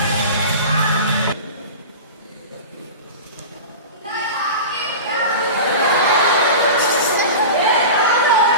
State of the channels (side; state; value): both; inverted; correlation -0.31